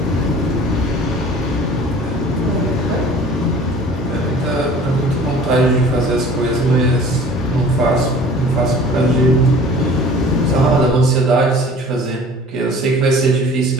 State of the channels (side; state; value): both; normal; correlation 0.47